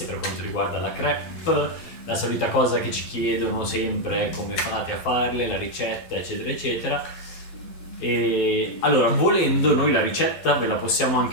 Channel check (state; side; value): late; right; 12 ms